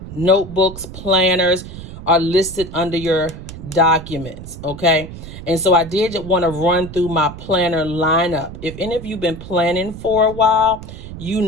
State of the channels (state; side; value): noise; right; rumble, 12 dB below the sound